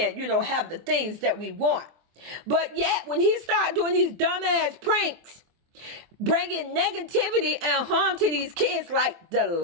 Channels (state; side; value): late; left; 24 ms